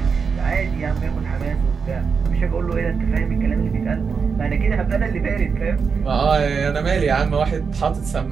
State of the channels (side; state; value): left; quieter; 5.6 dB